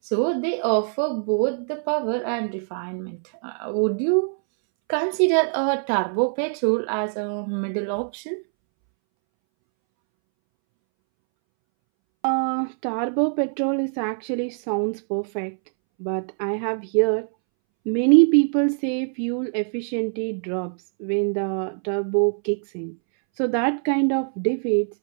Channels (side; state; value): left; silent; 63 dB below the other